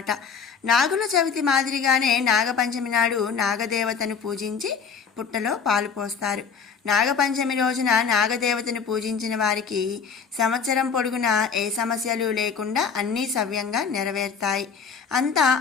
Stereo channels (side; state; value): right; quieter; 6.1 dB